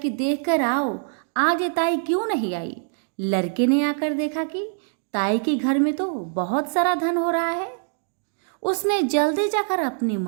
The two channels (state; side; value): silent; left; digital silence